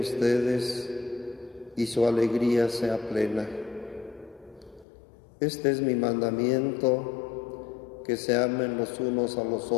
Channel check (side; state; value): right; drops out; at 4.9 s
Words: y su alegría sea plena. Este es mi mandamiento, que se amen los unos a los